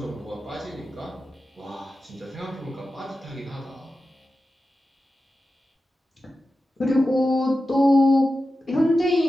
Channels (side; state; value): both; normal; correlation 0.93